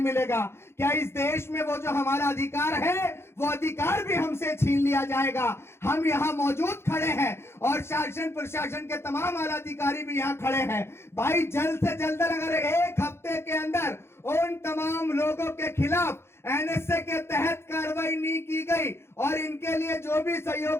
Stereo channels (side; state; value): right; late; 0.12 ms